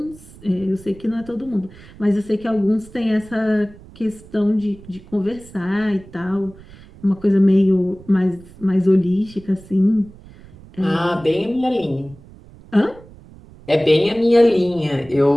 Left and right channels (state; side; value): noise; right; rumble, 21 dB below the sound